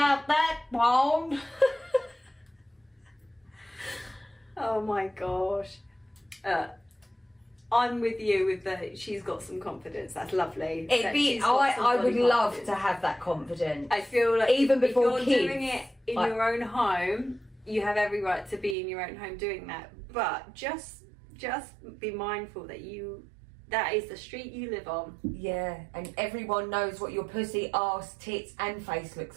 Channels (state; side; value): drops out; left; at 18.8 s